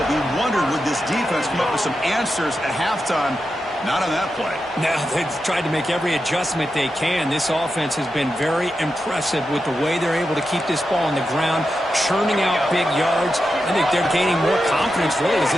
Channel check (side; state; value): both; normal; correlation 0.89